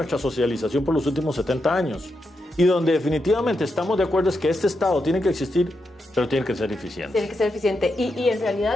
socialización por los últimos 70 años. Y donde definitivamente estamos de acuerdo es que este Estado tiene que existir, pero tiene que ser eficiente. Tiene que ser eficiente. Y en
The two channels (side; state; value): both; normal; correlation 0.85